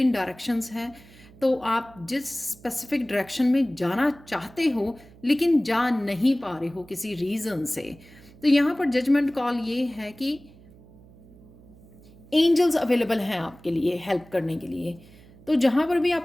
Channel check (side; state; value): right; noise; hum, 23 dB below the sound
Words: डायरेक्शंस हैं तो आप जिस स्पेसिफिक डायरेक्शन में जाना चाहते हो लेकिन जा नहीं पा रहे हो किसी रीज़न से। तो यहाँ पर जजमेंट कॉल ये है कि एंजल्स अवेलेबल हैं आपके लिए हेल्प करने के लिए। तो जहाँ पर भी